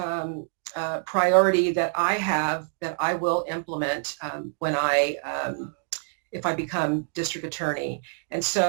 priority that I have, that I will implement when if I become district attorney. And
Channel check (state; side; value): silent; left; digital silence